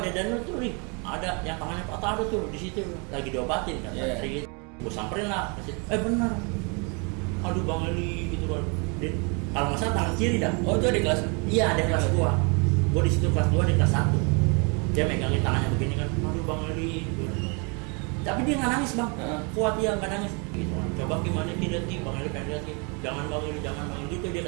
Daniel tuh Li, ada yang tangannya patah ada tuh di situ lagi diobatin kan. Intri gitu. Gue samperin lah, bener. Aduh bang Eli gitu kan. Kalau nggak salah tangan kiri dah. Oh itu ada kelas? Iya ada kelas 2. Gue di situ kelas 2 di kelas 1. Dia megangin tangannya begini kan. Aduh bang Eli. Gitu. Tapi dia nggak nangis bang. Kuat dia nggak nangis. Gitu kan. Coba gimana tidak sih bang Eli pengen lihat sih. Jangan bang Eli. Gitu dia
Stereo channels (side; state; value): left; quieter; 33.4 dB